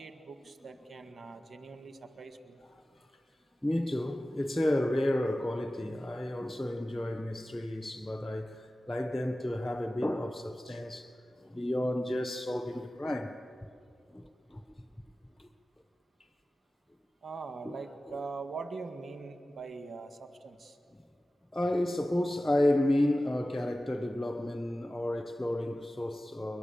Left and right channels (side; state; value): both; normal; correlation 0.96